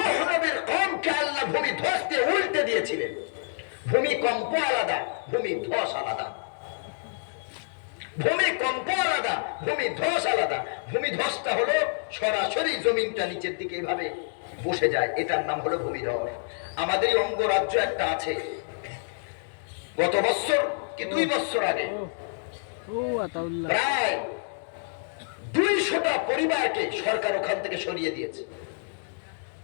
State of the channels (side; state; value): right; silent; digital silence